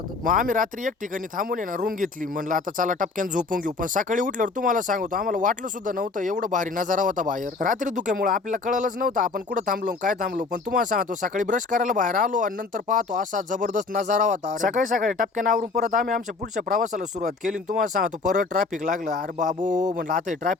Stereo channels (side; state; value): right; quieter; 4.1 dB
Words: मग आम्ही रात्री एक ठिकाणी थांबून ना रूम घेतली. म्हणलं आता चला टपक्यान झोपून घेऊ. पण सकाळी उठल्यावर तुम्हाला सांगतो आम्हाला वाटलं सुद्धा नव्हतं एवढं भारी नजारा होता बाहेर. रात्री धुक्यामुळे आपल्याला कळलंच नव्हतं आपण कुठं थांबलो काय थांबलो. पण तुम्हाला सांगतो सकाळी ब्रश करायला बाहेर आलो आणि नंतर पाहतो असा जबरदस्त नजारा होता. सकाळी टपक्यान आवरून परत आम्ही आमच्या पुढच्या प्रवासाला सुरुवात केली. तुम्हाला सांगतो परत ट्रॅफिक लागलं. अरे बाबू म्हणलं आता